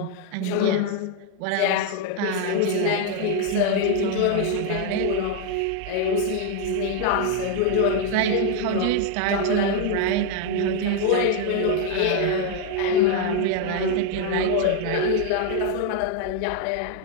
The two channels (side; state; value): both; different; correlation 0.00